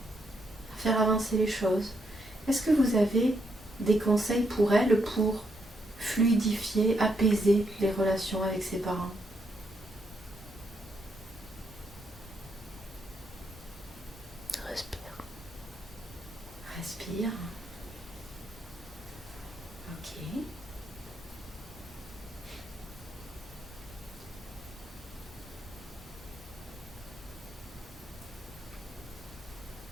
à faire avancer les choses. Est-ce que vous avez des conseils pour elle pour fluidifier, apaiser les relations avec ses parents? Respire. Respire. Ok.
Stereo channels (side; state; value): both; normal; correlation 0.78